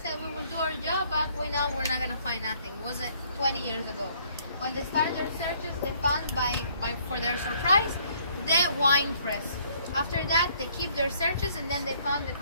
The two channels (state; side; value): inverted; both; correlation -0.63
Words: we will do our job, but we know we're not gonna find nothing. It was 20 years ago. When they started their searches, they found for their surprise, the wine press. After that, they keep their searches, and then they found the